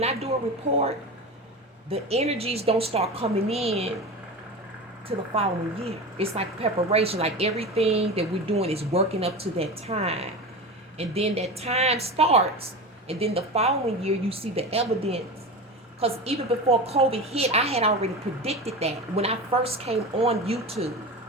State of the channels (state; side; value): normal; both; correlation 0.27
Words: I do a report, the energies don't start coming in to the following year. It's like preparation, like everything that we're doing is working up to that time. And then that time starts, and then the following year you see the evidence. Because even before COVID hit, I had already predicted that. When I first came on YouTube,